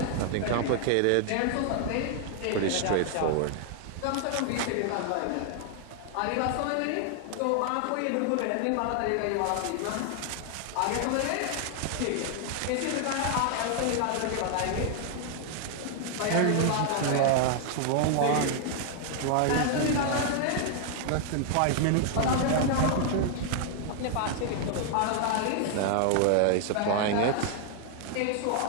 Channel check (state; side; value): different; both; correlation 0.00